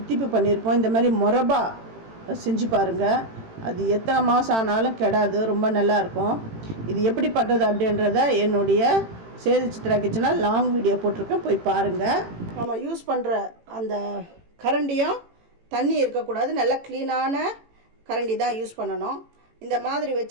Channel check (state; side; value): late; left; 18 ms